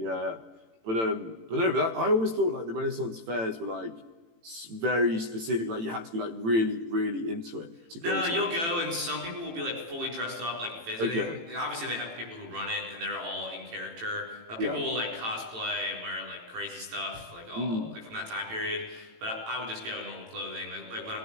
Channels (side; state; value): left; late; 18 ms